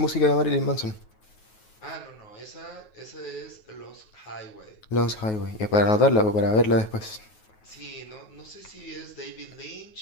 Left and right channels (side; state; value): right; late; 9.4 ms